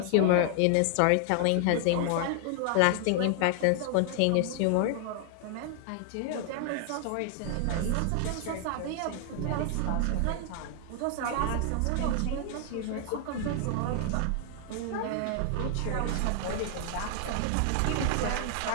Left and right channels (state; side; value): different; both; correlation 0.00